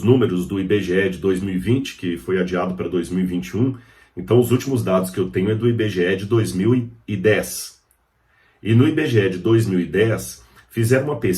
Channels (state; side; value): identical; both; correlation 1.00